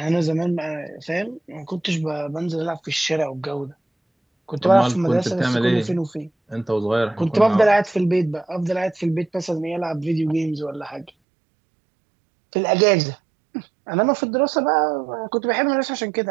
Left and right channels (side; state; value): left; drops out; at 11.1 s